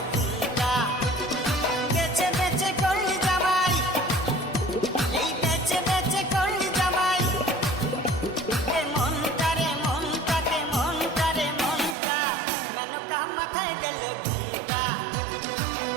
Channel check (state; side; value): drops out; left; at 12.0 s